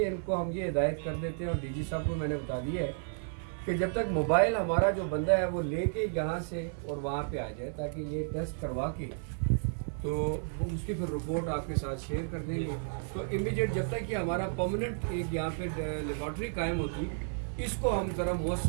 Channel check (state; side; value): silent; left; 56 dB below the other